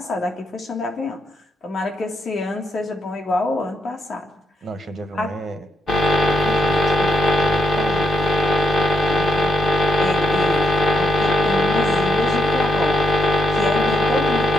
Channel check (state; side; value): normal; both; correlation 0.78